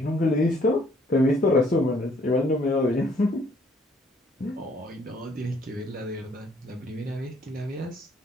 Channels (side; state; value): both; normal; correlation 0.63